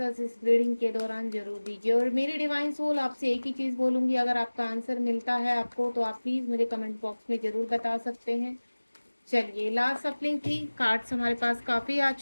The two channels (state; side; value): inverted; both; correlation -1.00